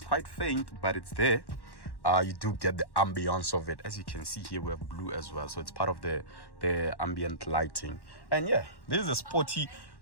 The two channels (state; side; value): late; right; 1.1 ms